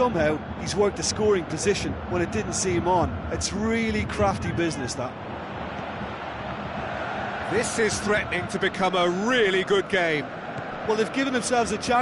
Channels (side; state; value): both; identical; correlation 1.00